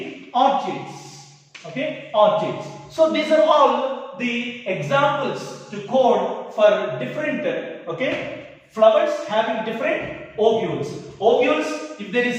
orchids. Okay, orchids. So these are all the examples to quote for different flowers having different ovules. Ovules, if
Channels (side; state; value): both; identical; correlation 1.00